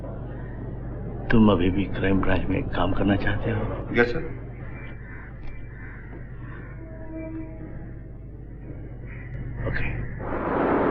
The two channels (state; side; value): identical; both; correlation 1.00